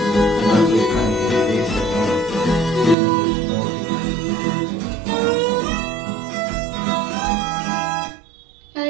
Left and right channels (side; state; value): left; drops out; at 3.0 s